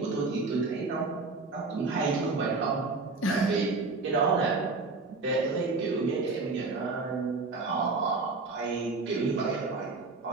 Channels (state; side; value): quieter; left; 3.8 dB